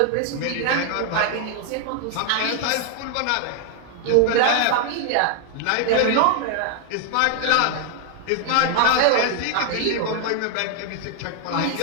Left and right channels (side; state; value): both; different; correlation 0.00